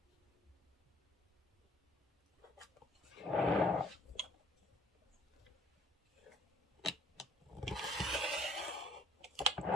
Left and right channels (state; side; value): normal; both; correlation 0.57